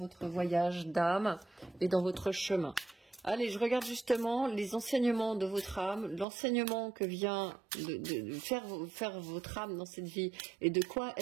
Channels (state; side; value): drops out; left; at 6.2 s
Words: voyage d'âme et dans votre chemin. Allez, je regarde justement les enseignements de votre âme, l'enseignement que vient de faire votre âme dans cette vie et de quoi